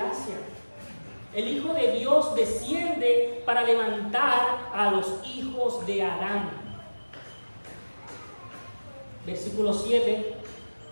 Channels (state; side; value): inverted; both; correlation -1.00